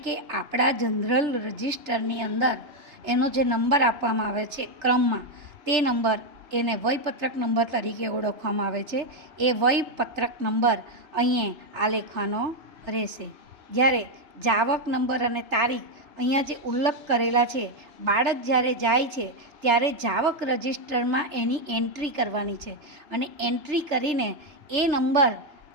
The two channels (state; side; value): late; left; 3.3 ms